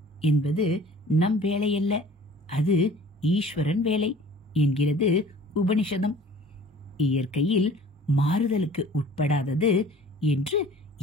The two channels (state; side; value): normal; both; correlation 0.48